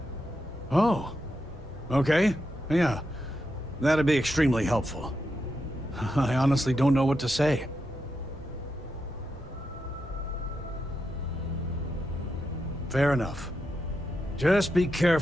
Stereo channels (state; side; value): normal; both; correlation 0.85